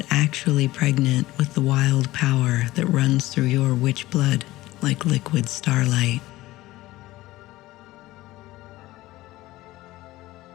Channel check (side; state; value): right; quieter; 17.6 dB